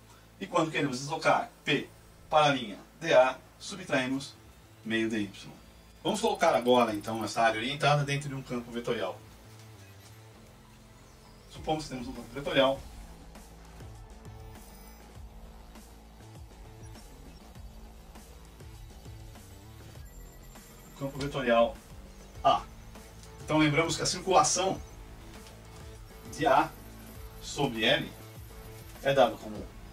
E quando queremos deslocar P para a linha DA, subtraímos meio dy. Vamos colocar agora, então, essa área orientada dentro de um campo vetorial. Supomos que temos um campo vetorial. Campo vetorial A. Então lembramos que a circulação de A sobre L é dada como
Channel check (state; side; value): identical; both; correlation 1.00